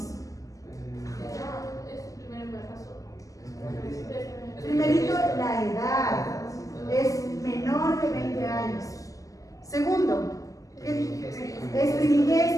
Primerito, la edad. Es menor de 20 años. Segundo, es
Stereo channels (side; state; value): right; late; 0.16 ms